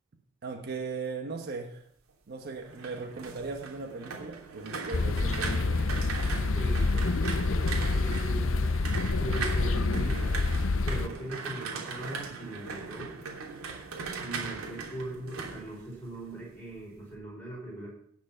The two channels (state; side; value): normal; both; correlation 0.71